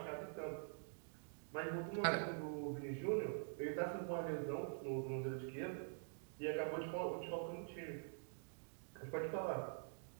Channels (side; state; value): left; silent; digital silence